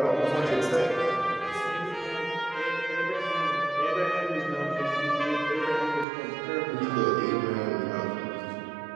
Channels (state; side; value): drops out; left; at 6.1 s